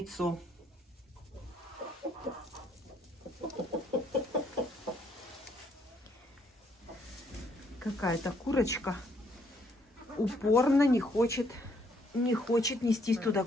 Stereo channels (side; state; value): both; normal; correlation 0.69